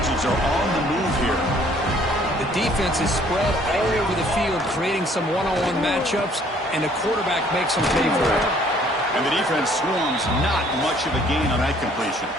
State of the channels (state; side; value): normal; both; correlation 0.59